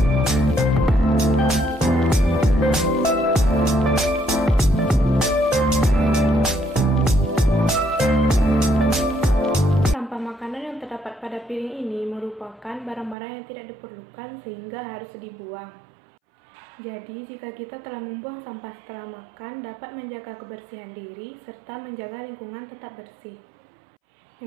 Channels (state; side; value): drops out; left; at 13.2 s